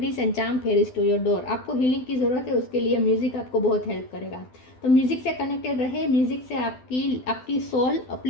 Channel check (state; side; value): late; right; 12 ms